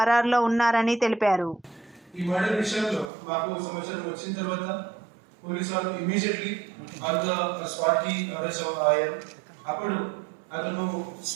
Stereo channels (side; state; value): left; drops out; at 3.1 s